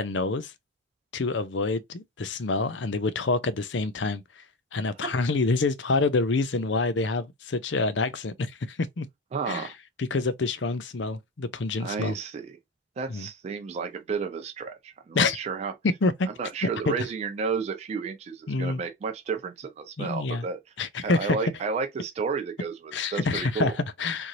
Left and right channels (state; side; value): normal; both; correlation 0.22